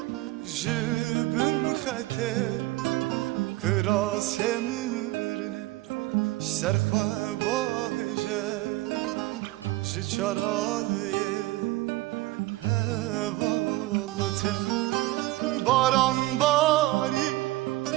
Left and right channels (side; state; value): left; quieter; 18.5 dB